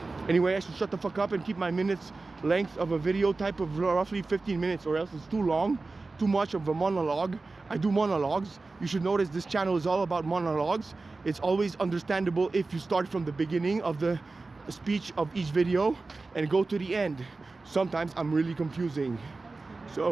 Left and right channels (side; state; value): left; quieter; 3.6 dB